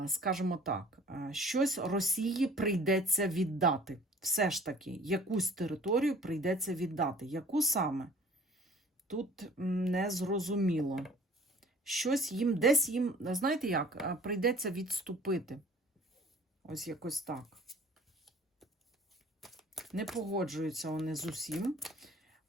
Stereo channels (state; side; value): normal; both; correlation 0.50